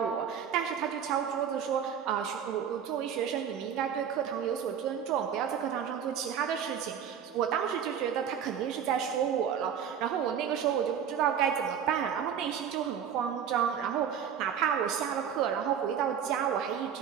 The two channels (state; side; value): quieter; left; 8.2 dB